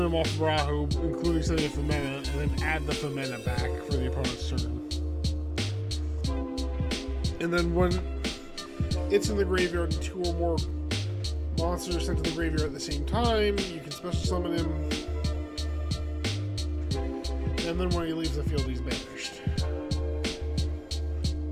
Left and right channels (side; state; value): both; identical; correlation 1.00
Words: them off of Rahu, including setting a Femina, and then add the Femina back for the opponent's turn. And then when it's in the graveyard and 2 or more monsters are sent to the graveyard at the same time, you can special summon him. and then when he leaves the field, he's banished.